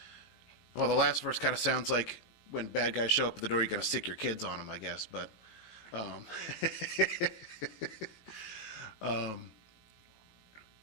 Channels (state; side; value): late; right; 18 ms